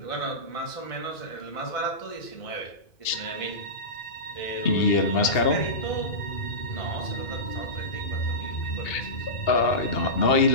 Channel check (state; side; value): late; right; 2.7 ms